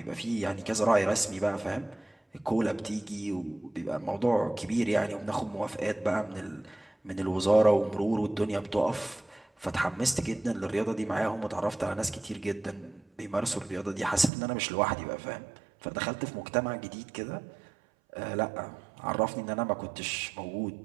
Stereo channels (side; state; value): left; drops out; at 14.3 s